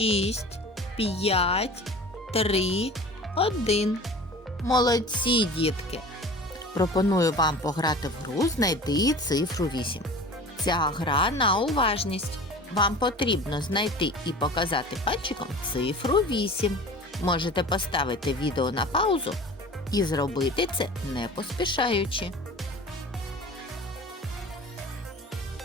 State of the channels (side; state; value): both; normal; correlation 0.39